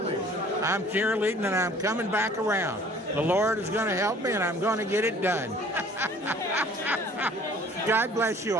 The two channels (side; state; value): both; normal; correlation 0.52